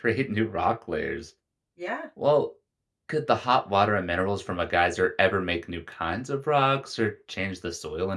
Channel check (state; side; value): identical; both; correlation 1.00